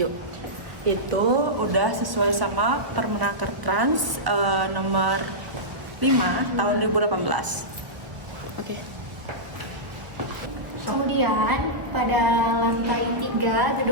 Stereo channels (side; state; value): left; late; 1.3 ms